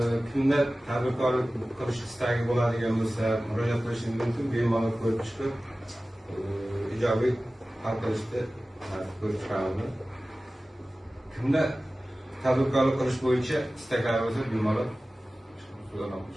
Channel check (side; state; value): both; normal; correlation 0.97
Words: Kimda tadbirkorlik qilish istagi bo'ladigan bo'lsa, murojaat qilishingiz mumkin. Bemalol ko'rib chiqib, ijobiy hal qilishni ko'rib chiqamiz. Kimda tadbirkorlik qilish bo'yicha istaklari bo'lsa, bemalol so'zlab